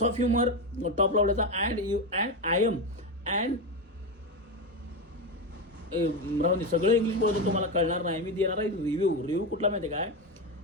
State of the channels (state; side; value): normal; both; correlation 0.14